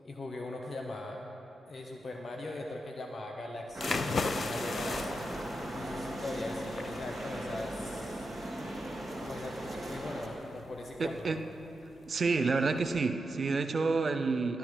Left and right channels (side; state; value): both; normal; correlation 0.87